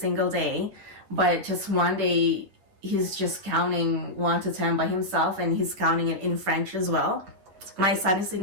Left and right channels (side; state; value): left; late; 10 ms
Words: day, but just one day he's just counting 1 to 10 by himself, and he's counting it in French as well. My son is